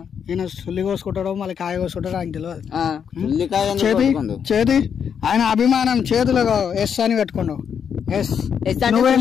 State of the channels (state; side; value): quieter; right; 7.5 dB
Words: ఈయన సుల్లి కోసుకుంటాడో మళ్ళీ కాయ కోసుకుంటాడో ఆయనకు తెలియదు. చేతి ఆయన అభిమానం చేతిలో ఎస్ అని పెట్టుకోండు. ఎస్ నువ్వేం